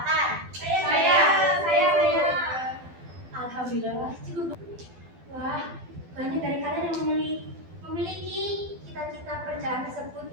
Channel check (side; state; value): left; late; 12 ms